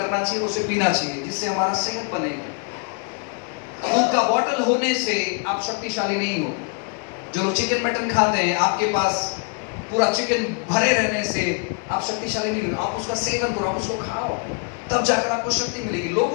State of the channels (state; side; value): quieter; right; 38.6 dB